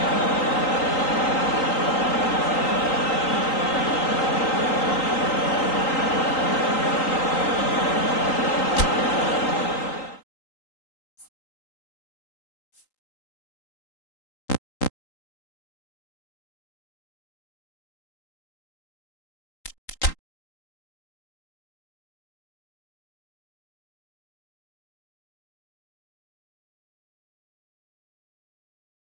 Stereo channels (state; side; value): late; right; 3.8 ms